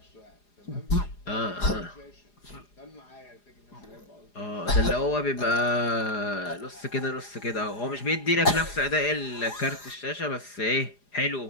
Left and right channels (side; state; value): right; late; 4.9 ms